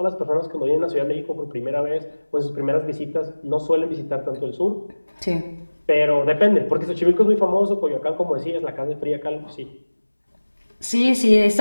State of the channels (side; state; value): both; inverted; correlation -1.00